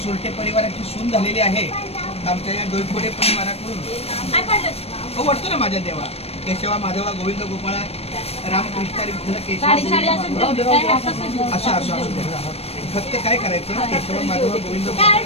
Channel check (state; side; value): late; right; 0.29 ms